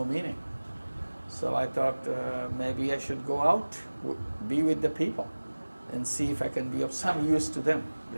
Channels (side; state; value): both; inverted; correlation -1.00